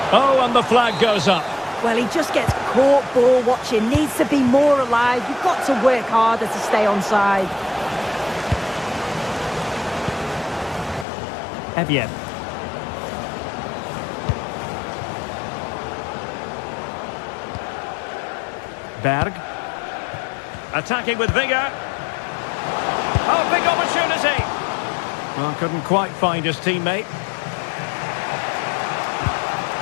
Oh, and the flag goes up. Well, he just gets caught ball watching. Needs to be more alive. You've got to work harder to stay onside. Evian. Berg. Attacking with vigour. Oh, big opportunity. Well, couldn't quite find his teammate.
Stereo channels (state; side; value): drops out; right; at 11.1 s